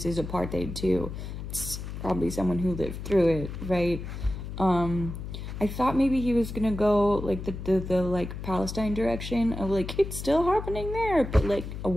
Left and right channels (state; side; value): noise; left; hum, 8 dB below the sound